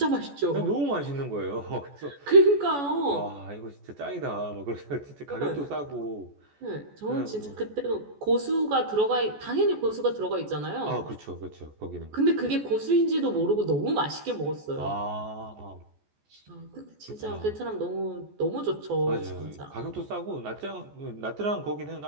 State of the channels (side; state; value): left; late; 14 ms